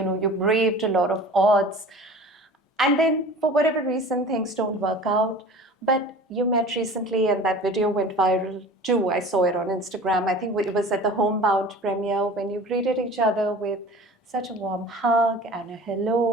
braved a lot of odds, and then for whatever reason things don't work out. But you met recently, and that video went viral too. I saw it on Instagram. I think it was at the Homebound premiere when you greeted each other with such a warm hug and a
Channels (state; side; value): normal; both; correlation 0.40